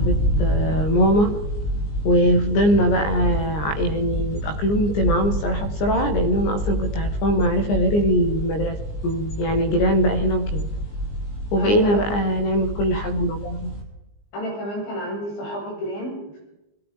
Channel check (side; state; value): right; late; 20 ms